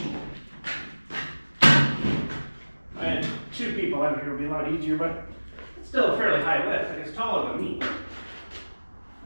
I had 2 people out here, it would be a lot easier, but it's still a fairly high lift. Like, it's taller than me.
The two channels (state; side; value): inverted; both; correlation -1.00